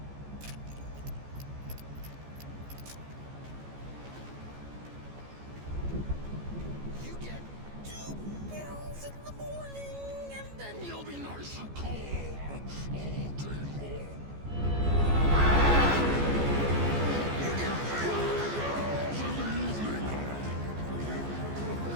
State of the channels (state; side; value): late; left; 14 ms